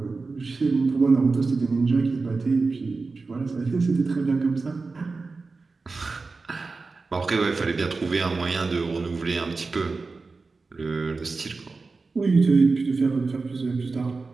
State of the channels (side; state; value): left; quieter; 4.0 dB